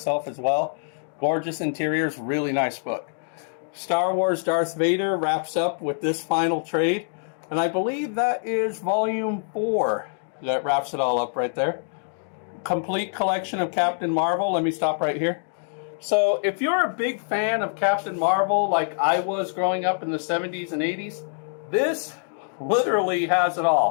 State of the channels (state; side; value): silent; right; digital silence